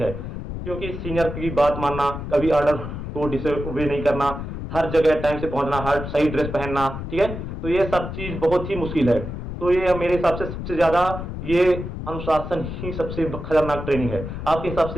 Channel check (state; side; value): noise; left; rumble, 7 dB below the sound